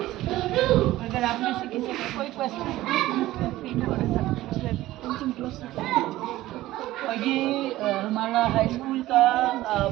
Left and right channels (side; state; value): left; quieter; 16.2 dB